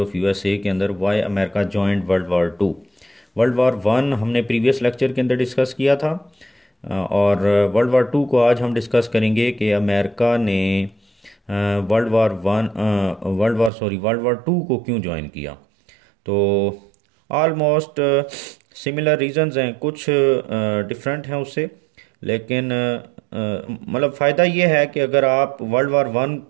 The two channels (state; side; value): drops out; left; at 13.7 s